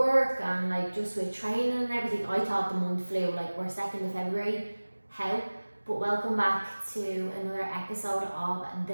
and like just with training and everything, I thought the month flew. Like, we're 2nd of February, how? But welcome back to another episode of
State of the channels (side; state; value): both; inverted; correlation -1.00